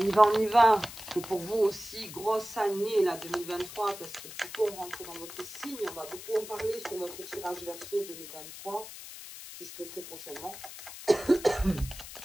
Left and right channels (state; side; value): noise; left; hiss, 13 dB below the sound